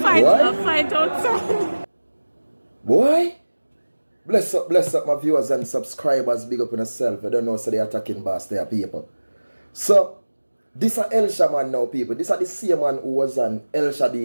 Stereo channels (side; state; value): both; inverted; correlation -1.00